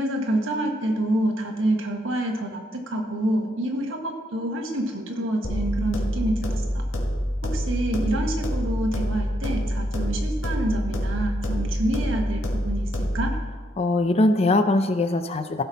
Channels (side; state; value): both; normal; correlation 0.76